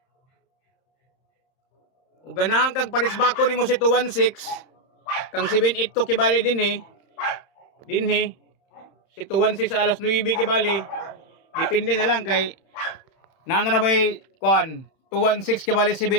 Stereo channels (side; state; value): right; late; 31 ms